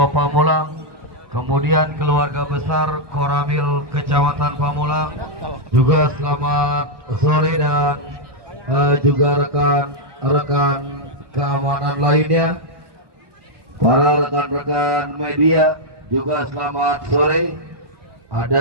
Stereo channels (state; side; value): late; left; 1.2 ms